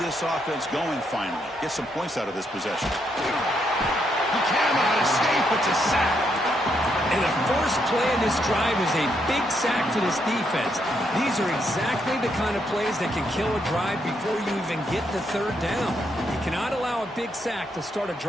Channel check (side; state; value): both; normal; correlation 0.77